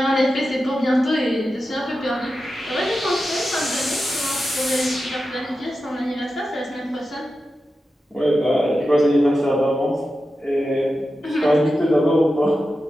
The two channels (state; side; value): normal; both; correlation 0.91